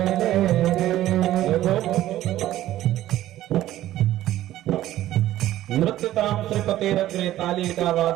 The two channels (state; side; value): quieter; left; 14.0 dB